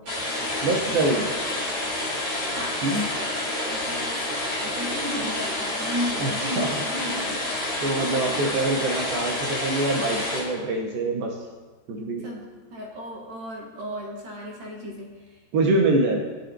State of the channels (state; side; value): late; left; 13 ms